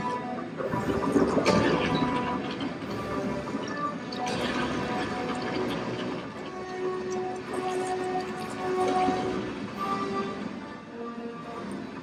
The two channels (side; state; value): both; identical; correlation 1.00